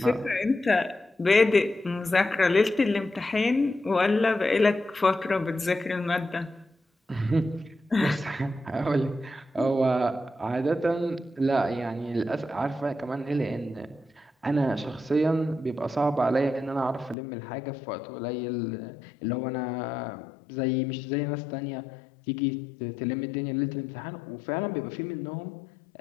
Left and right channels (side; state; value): right; drops out; at 17.2 s